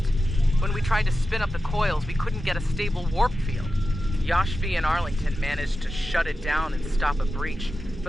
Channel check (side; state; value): both; normal; correlation 0.92